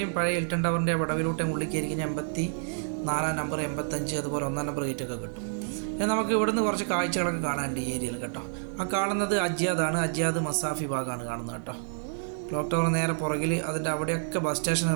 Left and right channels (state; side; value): silent; left; digital silence